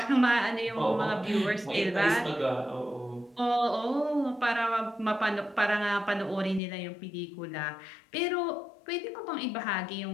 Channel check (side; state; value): right; drops out; at 6.6 s